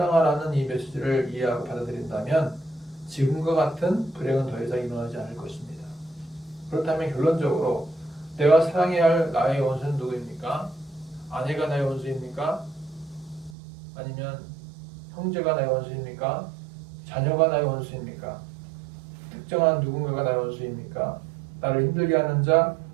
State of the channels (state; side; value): drops out; left; at 13.6 s